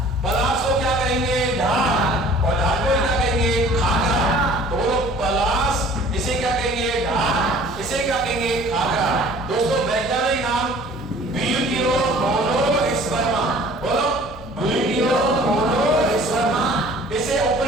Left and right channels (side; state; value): both; normal; correlation 0.50